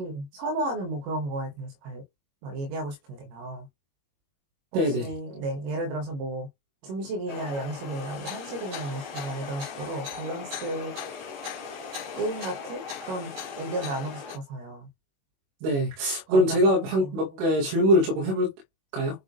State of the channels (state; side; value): late; left; 21 ms